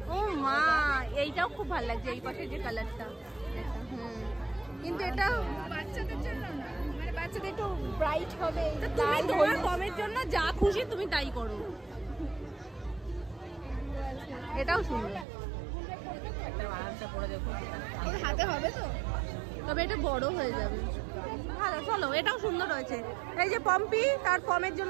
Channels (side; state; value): left; drops out; at 15.2 s